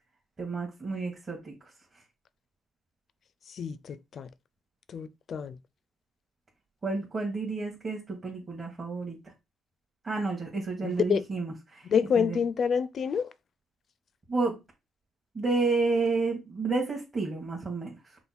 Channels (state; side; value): normal; both; correlation 0.73